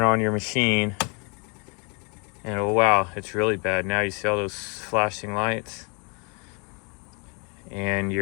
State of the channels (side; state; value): right; quieter; 34.0 dB